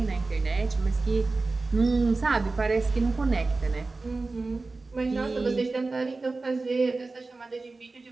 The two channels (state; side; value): quieter; left; 3.6 dB